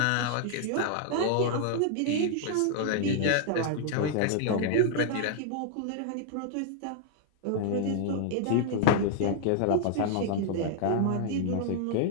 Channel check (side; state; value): both; different; correlation 0.00